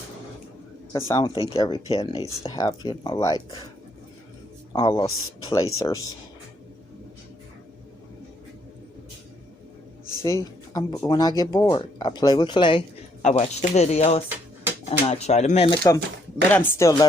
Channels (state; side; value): normal; both; correlation 0.70